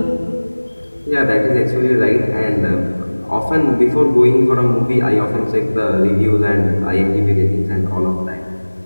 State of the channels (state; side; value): inverted; both; correlation -1.00